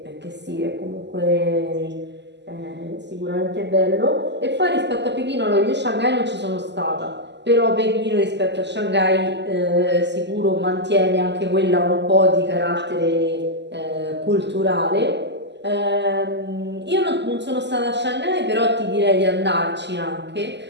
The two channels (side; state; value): left; late; 0.51 ms